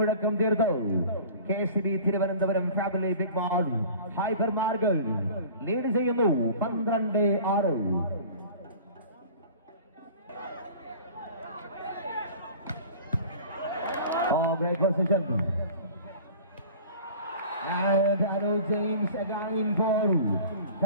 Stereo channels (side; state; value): both; inverted; correlation -0.43